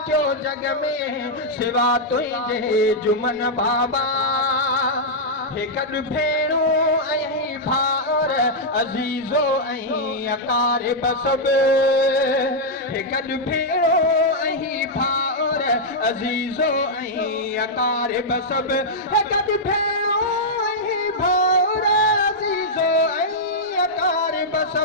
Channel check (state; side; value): normal; both; correlation -0.06